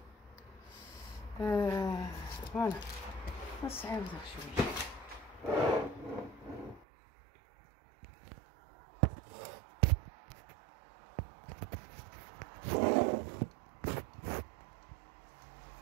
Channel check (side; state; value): left; drops out; at 6.9 s